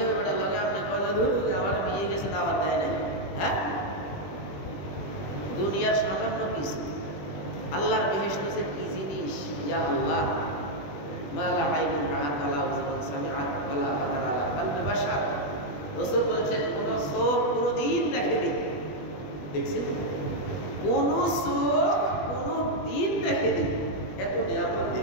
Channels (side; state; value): right; late; 20 ms